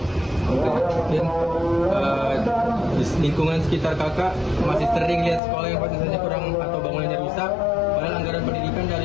Mungkin di lingkungan sekitar kakak masih sering lihat sekolah yang fasilitasnya kurang atau bangunannya rusak, padahal anggaran pendidikan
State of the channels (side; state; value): right; drops out; at 5.4 s